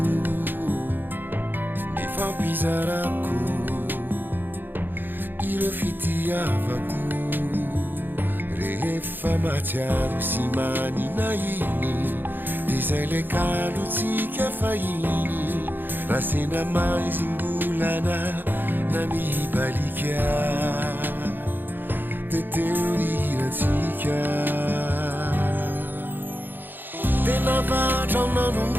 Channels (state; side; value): late; left; 0.093 ms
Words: nifampizarako ireo fitiavako rehefa matsiaro sy manina iny de zay le kalotsika fahiny raha sendra maizim-bolana na mibalika de teo niratsika de navatra